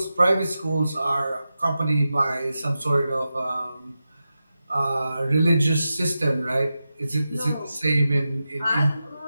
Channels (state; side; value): inverted; both; correlation -0.92